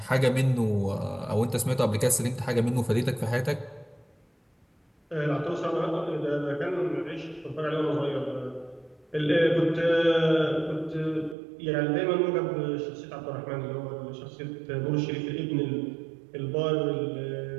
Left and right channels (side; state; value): left; drops out; at 11.4 s